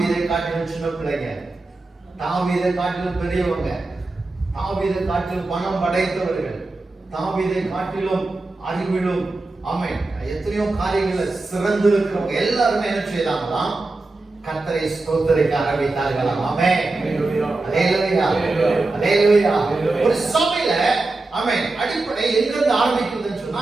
காட்டிலும் சின்ன பிள்ளைங்க, தாவீதை காட்டிலும் பெரியவங்க, தாவீதை காட்டிலும் பணம் படைத்தவர்கள், தாவீதை காட்டிலும் அறிவிலும் ஆமென் எத்தனையோ காரியங்களை சிறந்து இருக்கிறவங்க எல்லாருமே என்ன செய்தாங்களாம்? கர்த்தரை ஸ்தோத்திரிக்க ஆரம்பித்தார்களாம். ஆமென். அல்லேலூயா. அல்லேலூயா. ஒரு சபையில ஆமென் அடிப்படை எங்கிருந்து ஆரம்பிக்குதுன்னு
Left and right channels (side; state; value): left; quieter; 3.2 dB